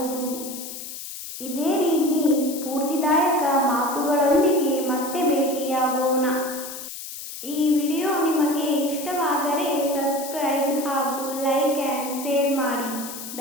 ಇದೇ ರೀತಿ ಸ್ಫೂರ್ತಿದಾಯಕ ಮಾತುಗಳೊಂದಿಗೆ ಮತ್ತೆ ಭೇಟಿಯಾಗೋಣ. ಈ ವಿಡಿಯೋ ನಿಮಗೆ ಇಷ್ಟವಾದರೆ ಸಬ್ಸ್ಕ್ರೈಬ್ ಹಾಗೂ ಲೈಕ್ ಆ್ಯಂಡ್ ಶೇರ್ ಮಾಡಿ.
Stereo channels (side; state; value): left; noise; hiss, 10 dB below the sound